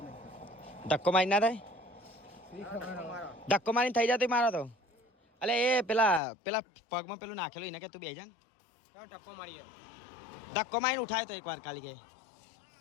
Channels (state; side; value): drops out; right; at 6.2 s